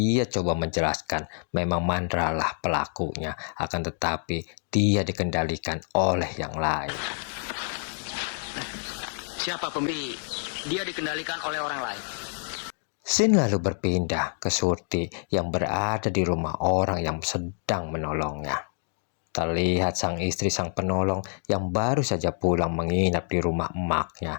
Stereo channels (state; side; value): silent; right; 60 dB below the other